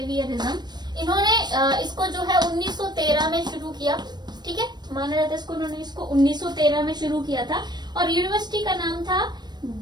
इन्होंने इसको जो है 1913 में शुरू किया। ठीक है, माना जाता है इसको, उन्होंने इसको 1913 में शुरू किया था, और यूनिवर्सिटी का नाम था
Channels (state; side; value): late; left; 0.21 ms